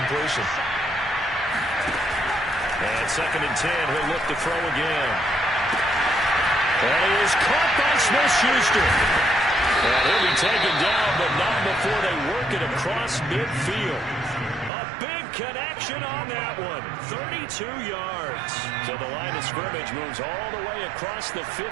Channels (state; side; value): drops out; left; at 14.7 s